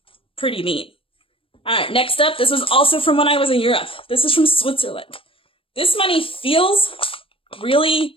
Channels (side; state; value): right; late; 0.26 ms